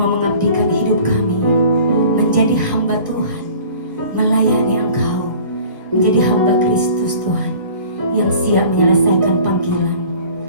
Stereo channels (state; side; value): inverted; both; correlation -0.47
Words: mengabdikan hidup kami menjadi hamba Tuhan, melayani Engkau, menjadi hamba Kristus Tuhan yang siap menyelesaikan panggilan